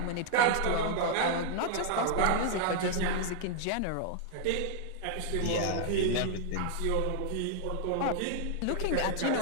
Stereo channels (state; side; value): different; both; correlation 0.00